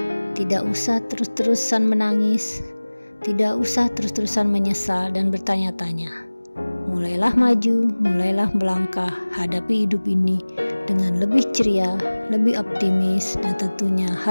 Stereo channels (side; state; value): both; inverted; correlation -1.00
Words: tidak usah terus-terusan menangis, tidak usah terus-terusan menyesal dan bertanya-tanya. Mulailah maju, mulailah melangkah, hadapi hidup ini dengan lebih ceria, lebih optimis, dan tentunya